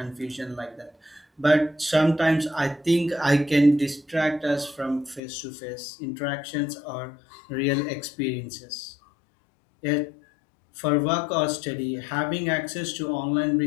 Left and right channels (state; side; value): drops out; right; at 5.2 s